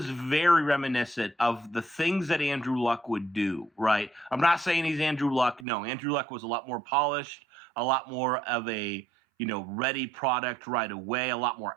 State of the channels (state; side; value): drops out; left; at 5.7 s